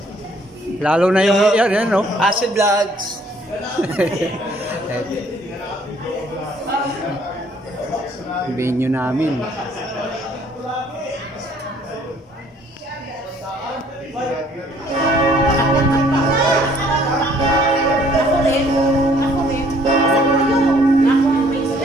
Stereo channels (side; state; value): both; normal; correlation 0.60